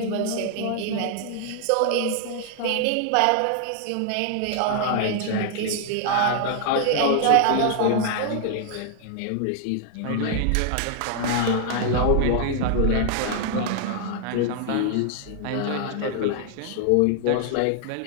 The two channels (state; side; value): different; both; correlation 0.00